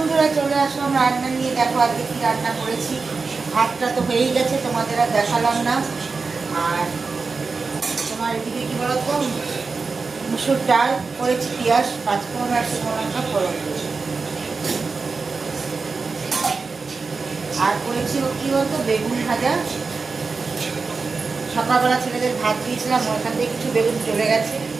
চলে আসলাম রান্না নিয়ে। দেখো আজকে কি রান্না করেছি। ভাতটা তো হয়েই গেছে, তোমাদের আর দেখালাম না। আর তোমার এদিকে কি বলতো, মুসুর ডাল করেছি, পেঁয়াজ পাঁচফোড়ন আর শুকনো লঙ্কা ফোড়ন দিয়ে। আর করেছি কি বলতো, বেগুন ভাজা। সকালবেলা ছেলেদের ভাত দিয়েছিলাম, ওখান থেকে কিছু বেগুন চলে গেছে,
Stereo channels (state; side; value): quieter; left; 4.4 dB